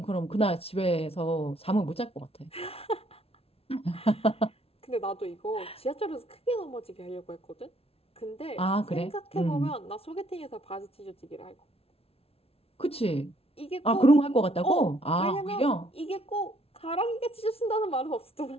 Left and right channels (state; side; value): late; right; 0.28 ms